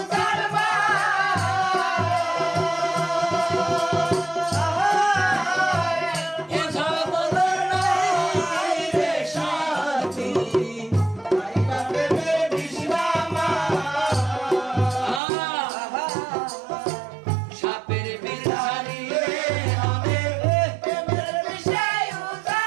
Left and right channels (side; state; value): left; drops out; at 15.2 s